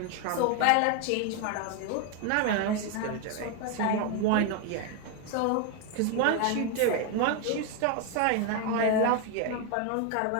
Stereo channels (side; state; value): both; different; correlation 0.01